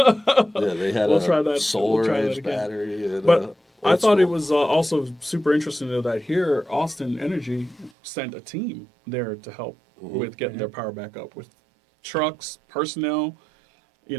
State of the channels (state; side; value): drops out; left; at 7.9 s